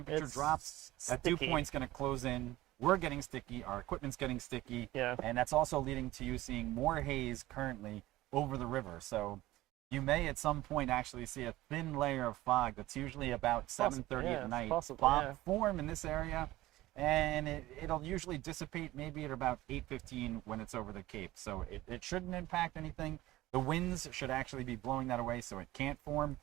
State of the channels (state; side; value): quieter; left; 17.1 dB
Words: drops, that dew point's going to close in. We're getting sticky, our equipment's getting sticky, and that's also leading to you seeing more haze currently over the river. So you may at some point actually see a thin layer of fog that's usually about 7:30 at night form in this area, and it'll usually dissipate maybe at about 8:15 when it's over the Cape. So it shouldn't impact anything. The winds should actually be blowing that away so it can't form,